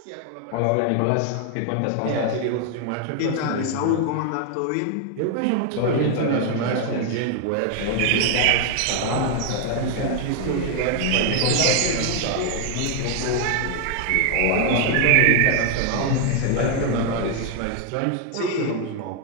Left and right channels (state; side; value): different; both; correlation 0.00